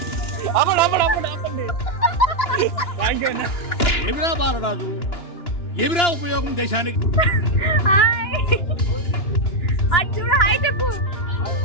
ఆపండి. థ్యాంక్ యూ అన్న. ఏమిరా బాలరాజు, ఏమిరా ఉపయోగం దేశానికి? హాయ్ అటు చూడు, హాయ్ చెప్పు.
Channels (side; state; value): right; late; 2.9 ms